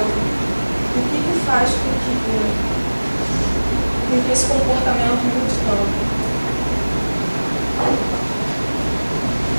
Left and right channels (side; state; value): both; inverted; correlation -1.00